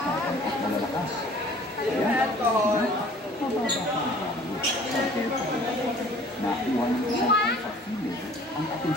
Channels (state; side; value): normal; both; correlation 0.51